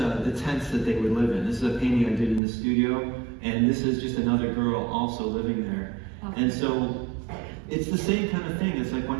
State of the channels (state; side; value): drops out; left; at 2.4 s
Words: tents that they would live in. This is a painting I did in the studio, and this is just another girl also living there. Okay. And so it's the same kind of thing. It's like